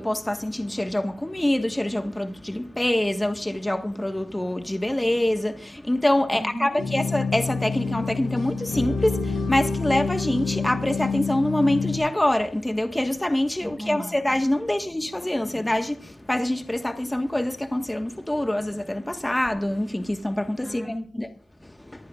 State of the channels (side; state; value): both; normal; correlation 0.98